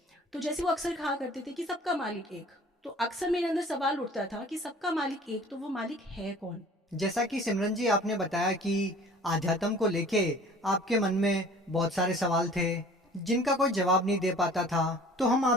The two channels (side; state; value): both; normal; correlation 0.48